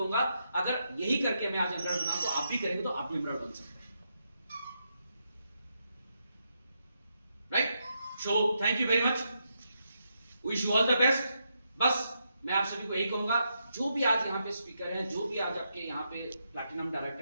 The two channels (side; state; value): both; inverted; correlation -0.82